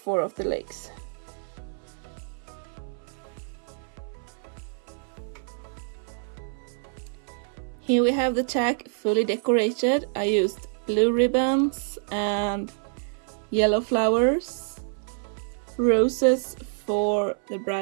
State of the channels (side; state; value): left; silent; 59 dB below the other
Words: of the legs. Here we have the tack fully decorated. I used blue ribbons and yellow flowers, roses for the